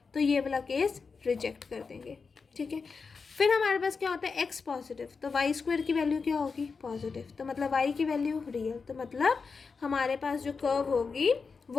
तो ये वाला केस रिजेक्ट कर देंगे। ठीक है, फिर हमारे पास क्या होता है, x पॉजिटिव, तो वाई स्क्वायर की वैल्यू क्या होगी, पॉजिटिव, तो मतलब y की वैल्यू रियल, तो मतलब हमारे पास जो कर्व होगी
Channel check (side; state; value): right; quieter; 4.9 dB